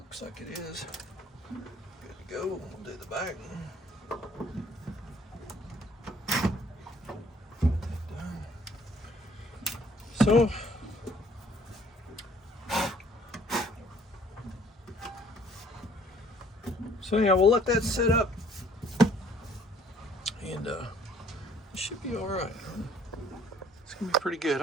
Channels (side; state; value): both; normal; correlation 0.59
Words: like it is. Good to go. We'll do the back. So anyhow, we'll let that sit up, and it should be all right. It's gonna be pretty good.